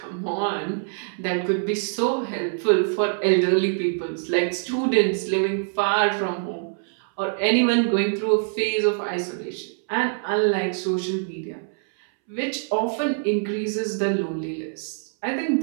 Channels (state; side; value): silent; left; 62 dB below the other